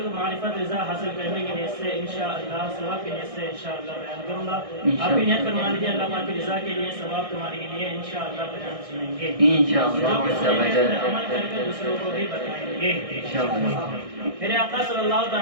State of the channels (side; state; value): left; late; 1.6 ms